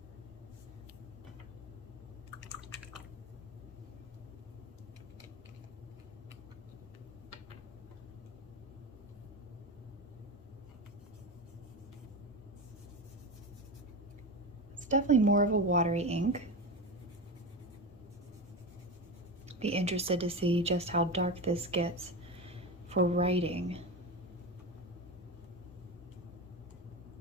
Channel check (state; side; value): normal; both; correlation 0.22